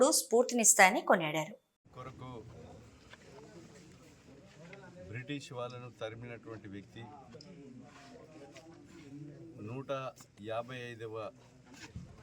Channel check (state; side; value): identical; both; correlation 1.00